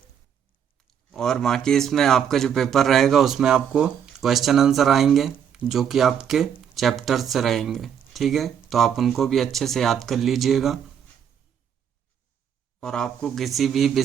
और बाकी इसमें आपका जो पेपर रहेगा उसमें आपको क्वेश्चन आंसर आएंगे जो कि आपके चैप्टर से रहेंगे, ठीक है। तो आप उनको भी अच्छे से याद कर लीजिएगा। और आपको किसी भी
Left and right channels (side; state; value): left; quieter; 8.4 dB